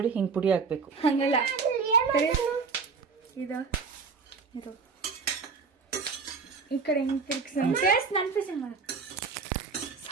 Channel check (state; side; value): quieter; left; 4.9 dB